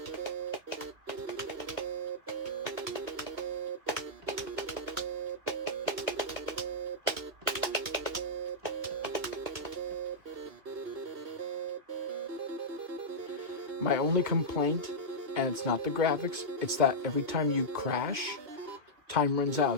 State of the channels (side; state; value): left; late; 2.1 ms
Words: My only complaint, and it's not the graphics, it's that every time you crash, time runs